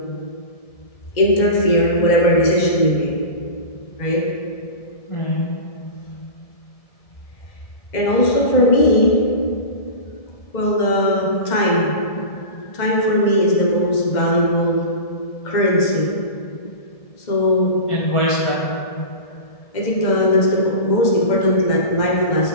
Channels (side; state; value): right; late; 1.7 ms